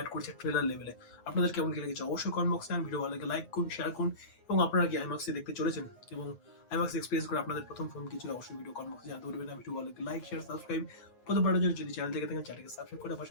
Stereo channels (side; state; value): right; late; 9.5 ms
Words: করছে ট্রেলার লেভেলে। আপনাদের কেমন কি লেগেছে অবশ্যই কমেন্ট বক্সে ভিডিও ভালো লাগে লাইক করুন, শেয়ার করুন এবং আপনারা কি আইম্যাক্সে দেখতে চলেছেন এবং আইম্যাক্স এক্সপিরিয়েন্স করে আপনাদের প্রথম ফিল্ম কি ছিল অবশ্যই ভিডিও কমেন্ট বক্সে জানাতে বলবেন। ভিডিও ভালো লাগে লাইক শেয়ার সাবস্ক্রাইব প্রথমবারের জন্য যদি চ্যানেল থেকে থাকেন চ্যানেলকে সাবস্ক্রাইব করে